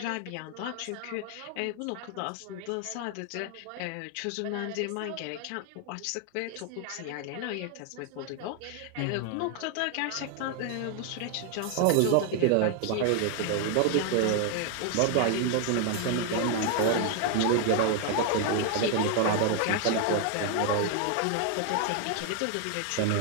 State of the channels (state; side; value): different; both; correlation 0.00